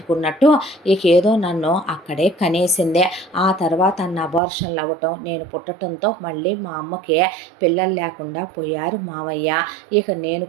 ఇక ఏదో నన్ను అక్కడే కనేసిందే. ఆ తర్వాత అన్న అబార్షన్లు అవ్వటం, నేను పుట్టడంతో మళ్ళీ మా అమ్మకి పిల్లలు లేకుండా పోయారు మావయ్య. ఇక నేను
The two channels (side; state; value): left; drops out; at 4.4 s